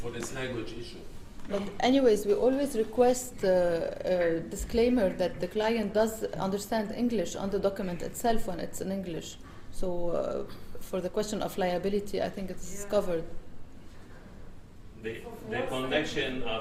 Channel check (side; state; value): both; identical; correlation 1.00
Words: this language issue. But anyways, we always request a disclaimer that the client does understand English on the document itself when it's in English. So for the question of liability, I think it's covered. The connection